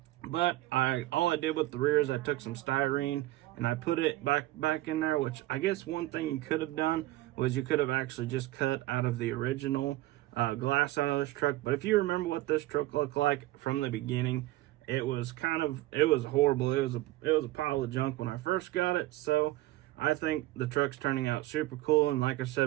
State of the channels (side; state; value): left; quieter; 17.0 dB